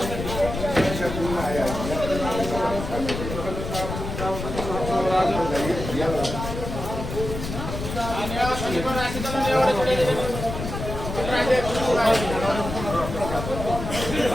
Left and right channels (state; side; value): noise; left; rumble, 6 dB below the sound